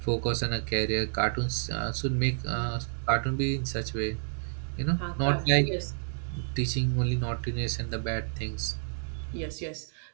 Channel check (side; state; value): left; silent; digital silence